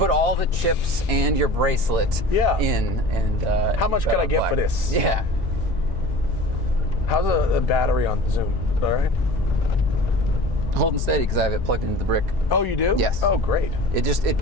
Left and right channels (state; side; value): normal; both; correlation 0.40